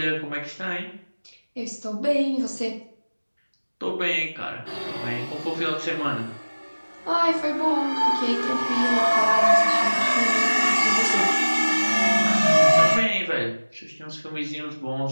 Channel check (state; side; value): inverted; both; correlation -1.00